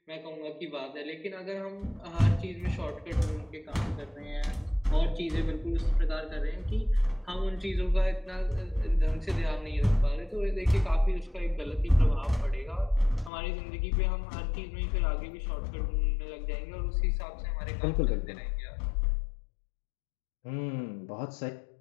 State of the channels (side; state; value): right; drops out; at 13.3 s